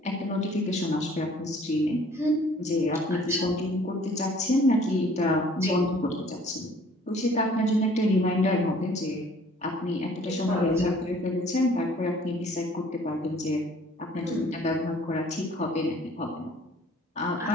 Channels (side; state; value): both; normal; correlation 0.55